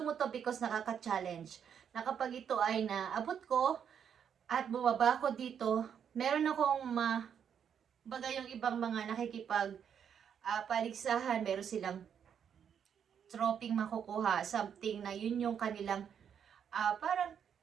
to because nakaka-challenge. Na kapag ito ay naabot ko at bumaba ko dito, meron akong baga yung ibang mga nakikipag paligsahan, meron silang troping makukuha, something na yun yung kanilang parang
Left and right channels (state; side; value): quieter; left; 8.0 dB